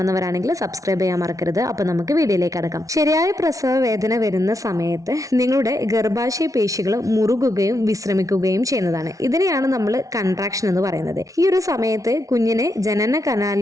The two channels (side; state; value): left; late; 0.17 ms